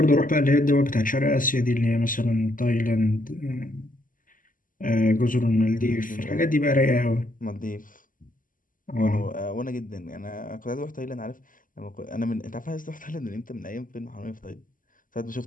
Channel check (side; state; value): right; late; 0.39 ms